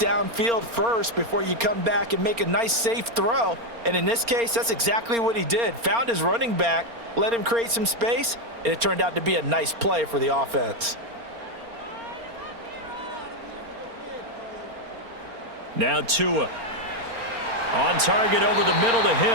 first before you come back and make a nice, safe throw. And in this case, that's exactly what he did. Found his running back, let him create some space, and it turned out to be a nice play for the offense. Now Tua. On target over the middle to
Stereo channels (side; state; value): left; late; 4.3 ms